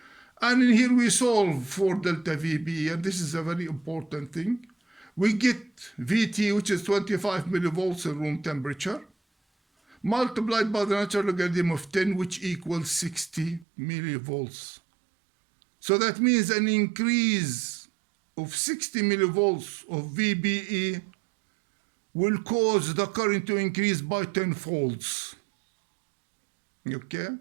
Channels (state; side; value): drops out; left; at 13.7 s